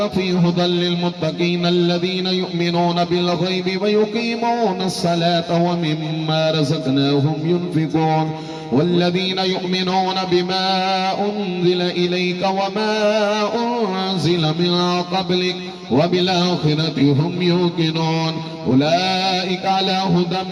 فيه هدى للمتقين الذين يؤمنون بالغيب ويقيمون الصلاة ومما رزقناهم ينفقون والذين يؤمنون بما أنزل إليك وما أنزل من قبلك وبالآخرة هم يوقنون أولئك على هدى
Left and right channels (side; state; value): both; identical; correlation 1.00